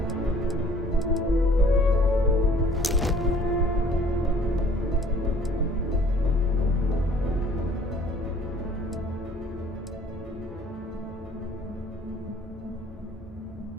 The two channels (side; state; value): both; normal; correlation 0.55